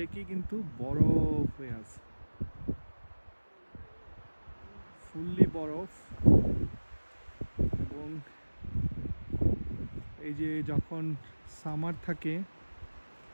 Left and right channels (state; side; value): inverted; both; correlation -1.00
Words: কিন্তু বরফ হয়ে আছে, ফুললি বরফ। এবং এই যে যখন সামার থাকে,